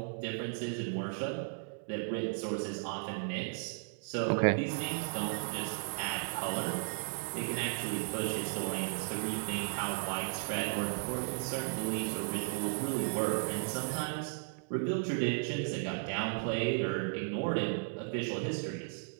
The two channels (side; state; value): left; silent; digital silence